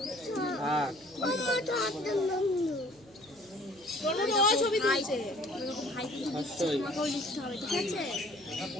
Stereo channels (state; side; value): noise; right; hum, 29 dB below the sound